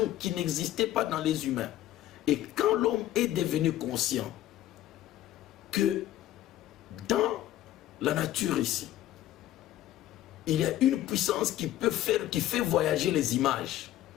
qui n'existait pas dans les humains. Et quand l'homme est devenu conscient que dans la nature ici, il y a une puissance qui fait voyager les images.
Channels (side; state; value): right; quieter; 13.5 dB